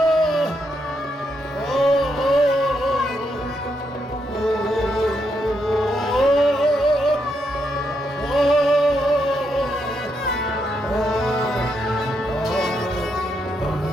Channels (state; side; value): normal; both; correlation 0.80